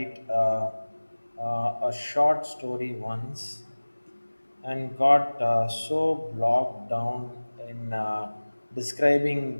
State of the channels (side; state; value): both; inverted; correlation -1.00